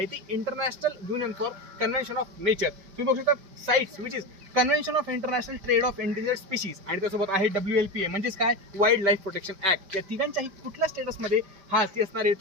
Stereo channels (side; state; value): left; late; 5.3 ms